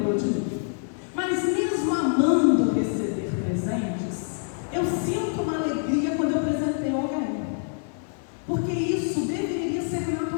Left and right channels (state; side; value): silent; right; 57 dB below the other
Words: de mim? Mas mesmo amando receber presentes, eu sinto uma alegria quando eu presenteio alguém. Porque isso deveria ser